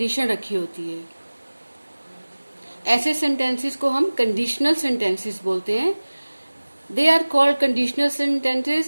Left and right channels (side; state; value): both; inverted; correlation -1.00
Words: रखी होती है। ऐसे सेंटेंसेस को हम कंडीशनल सेंटेंसेस बोलते हैं। They are called conditional sentences